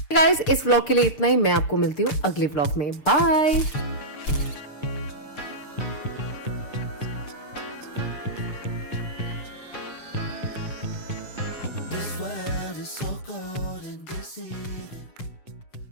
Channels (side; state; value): right; late; 6.7 ms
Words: Guys, इस व्लॉग के लिए इतना ही। मैं आपको मिलती हूँ अगले व्लॉग में। बाय।